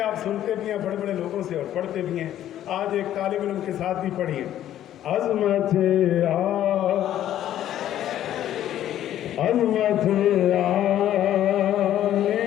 آپ سنتے بھی ہیں بڑے بڑے لوگوں سے اور پڑھتے بھی ہیں. آج ایک طالب علم کے ساتھ بھی پڑھیے. عظمت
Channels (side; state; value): right; quieter; 11.9 dB